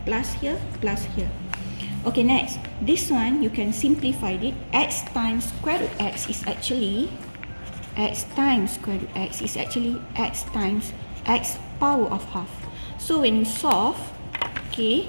plus here, plus here. Okay, next, this one you can simplify it. X times square root x is actually x times square root x is actually x times x power of half. So when you solve, okay,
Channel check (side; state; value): both; inverted; correlation -1.00